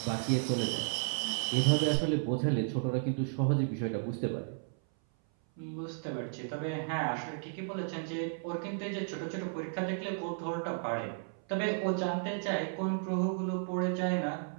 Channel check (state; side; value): silent; left; 55 dB below the other